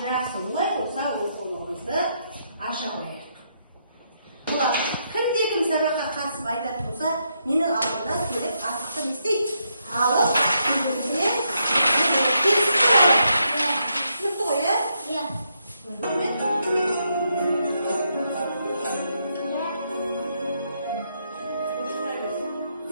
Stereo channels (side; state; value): both; inverted; correlation -0.78